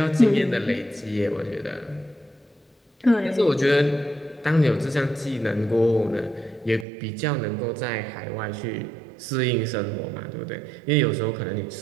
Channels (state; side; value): drops out; left; at 6.9 s